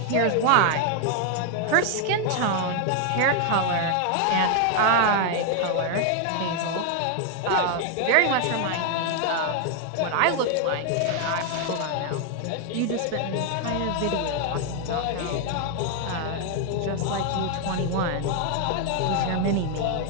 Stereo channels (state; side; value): different; both; correlation 0.00